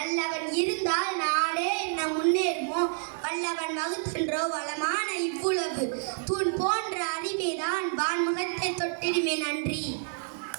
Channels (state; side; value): silent; left; 59 dB below the other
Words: அல்லவன் இருந்தால் நாடே என்ன முன்னேறுமோ. வல்லவன் வகுத்தன்றோ வளமான இவ்வுலகு. தூண் போன்ற அறிவேதான் வான்முகத்தை தொட்டிடுமே. நன்றி.